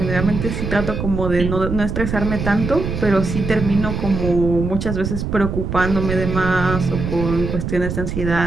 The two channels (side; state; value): right; noise; rumble, 4 dB below the sound